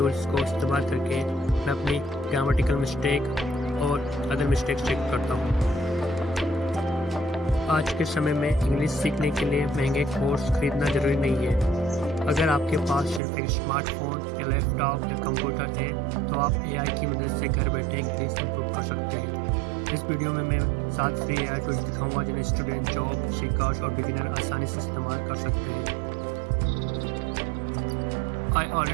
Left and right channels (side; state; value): left; drops out; at 13.2 s